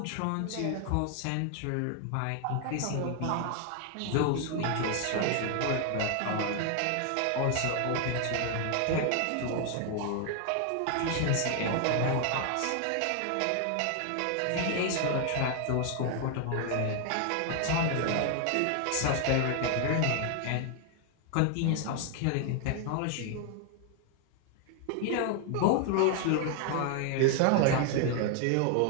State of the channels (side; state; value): both; different; correlation 0.00